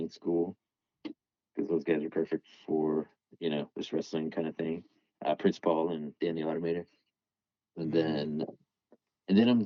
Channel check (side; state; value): both; identical; correlation 1.00